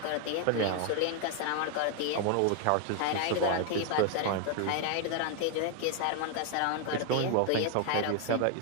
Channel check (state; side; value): different; both; correlation 0.01